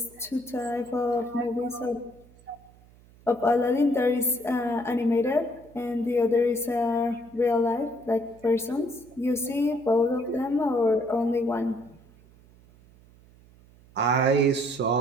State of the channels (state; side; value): noise; right; hum, 26 dB below the sound